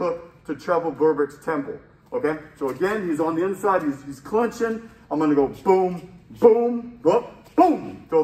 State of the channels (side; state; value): both; identical; correlation 1.00